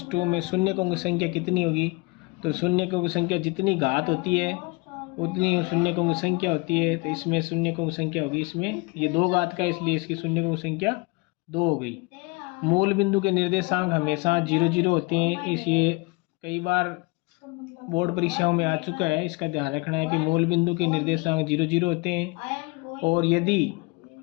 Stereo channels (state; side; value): quieter; right; 26.4 dB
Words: - 2 में शून्यकों की संख्या कितनी होगी। तो शून्यकों की संख्या जितनी घात होती है उतनी शून्यकों की संख्या होती है, तो इसमें शून्यकों की संख्या होगी, इसमें ये 2 घात का, इसलिए इसकी शून्यकों की संख्या 2 हो गई। मूल बिंदु के निर्देशांक हमेशा 0 0 होते हैं, इसलिए कई बार बोर्ड परीक्षाओं में आ चुका है, इसका ध्यान रखना है कि मूल बिंदु के निर्देशांक 0 0 होते हैं। और यदि